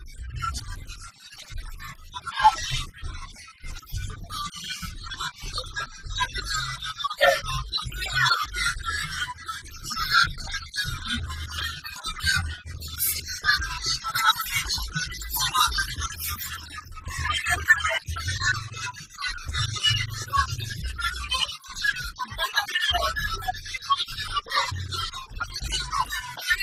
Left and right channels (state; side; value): identical; both; correlation 1.00